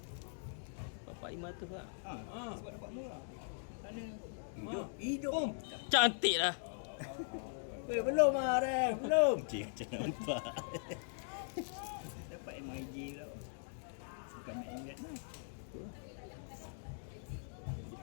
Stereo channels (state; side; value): silent; right; digital silence